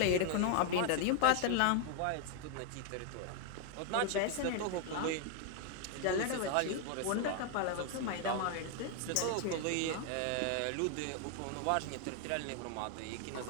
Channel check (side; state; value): both; different; correlation 0.00